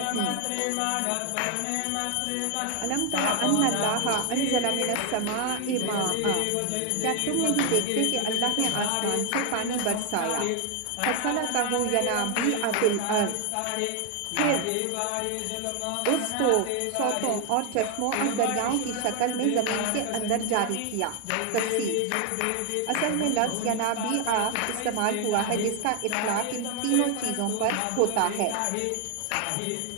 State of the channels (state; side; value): different; both; correlation 0.00